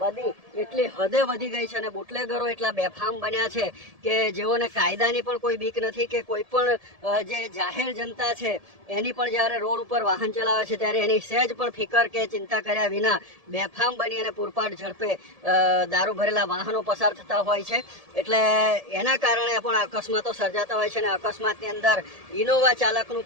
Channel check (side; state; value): left; late; 1.7 ms